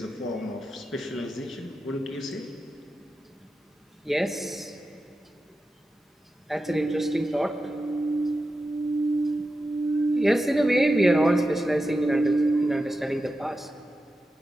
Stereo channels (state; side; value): normal; both; correlation 0.91